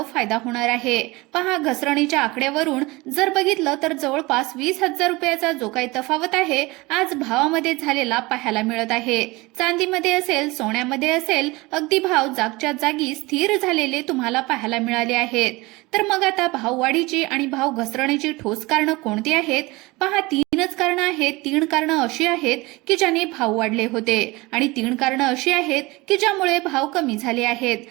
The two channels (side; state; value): left; quieter; 22.7 dB